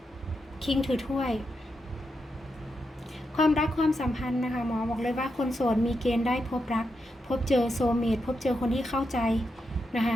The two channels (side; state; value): both; normal; correlation 0.85